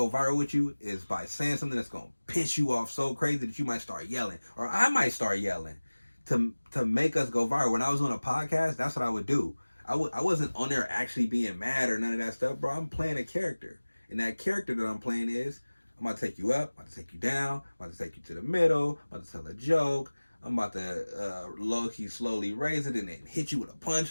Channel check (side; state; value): both; inverted; correlation -1.00